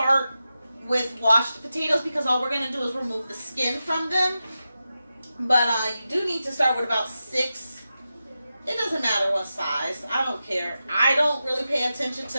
with washed potatoes because all we're going to do is remove the skin from them. But you do need to start with about 6. It doesn't matter what size. I don't care. I don't really pay attention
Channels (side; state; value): both; inverted; correlation -0.91